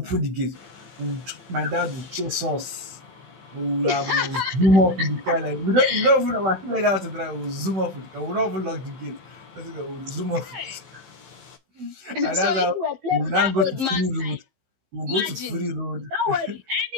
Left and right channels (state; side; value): late; left; 16 ms